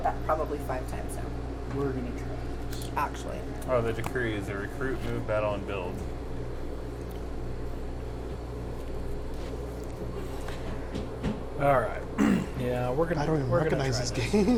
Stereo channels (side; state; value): both; identical; correlation 1.00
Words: that probably 5 times now. We're gonna try this. Actually. oh, the decree is a recruit, move, battle, and build. Alright. Yeah, we're gonna I don't even we're gonna recognize try this